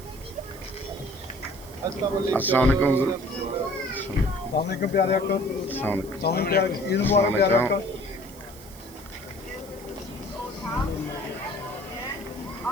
अस्सलाम वालेकुम प्यारे अक्का ईद मुबारक प्यारे अक्का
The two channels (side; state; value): right; noise; hiss, 19 dB below the sound